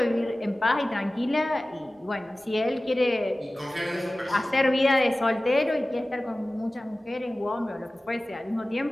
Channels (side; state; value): both; normal; correlation 0.97